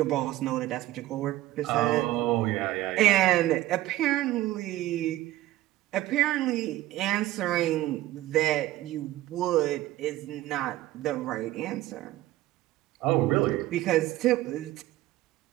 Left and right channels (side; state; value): left; quieter; 15.7 dB